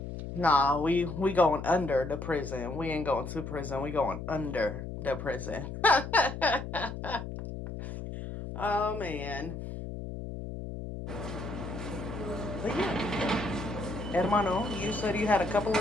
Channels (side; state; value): left; noise; hum, 7 dB below the sound